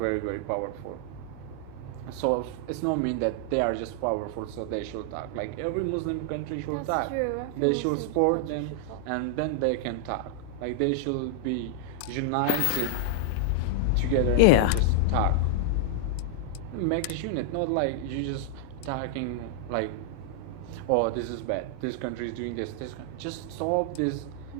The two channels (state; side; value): different; both; correlation -0.01